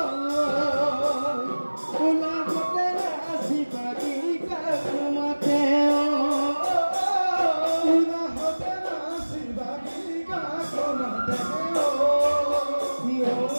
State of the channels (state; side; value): inverted; both; correlation -1.00